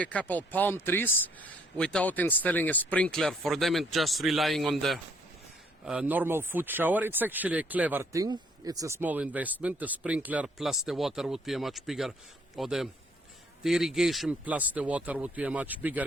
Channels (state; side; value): normal; both; correlation 0.65